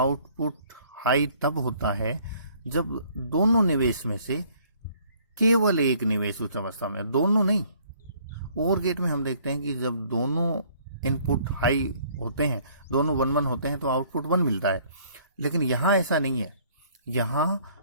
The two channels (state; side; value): inverted; both; correlation -0.60